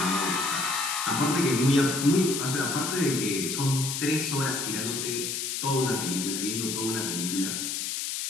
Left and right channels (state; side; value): noise; left; hiss, 3 dB below the sound